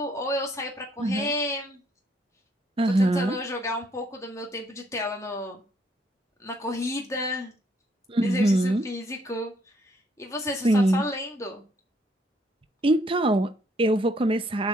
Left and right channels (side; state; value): both; normal; correlation 0.69